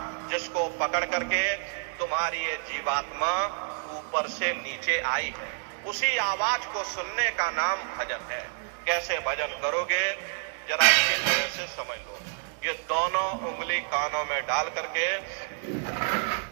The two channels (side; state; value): left; silent; digital silence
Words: जिसको पकड़ करके तुम्हारी ये जीवात्मा ऊपर से नीचे आई है। उसी आवाज को सुनने का नाम भजन है। कैसे भजन करोगे, जरा अच्छी तरह से समझ लो। ये दोनों उंगली कानों में डाल करके